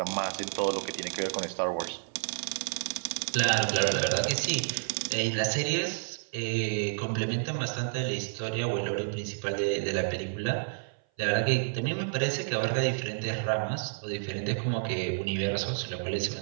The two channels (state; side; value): silent; left; 56 dB below the other